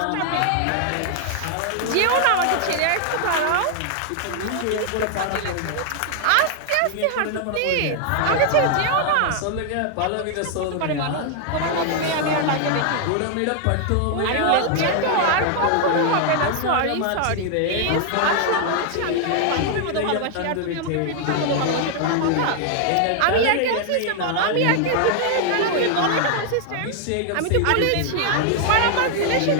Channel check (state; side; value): different; both; correlation 0.00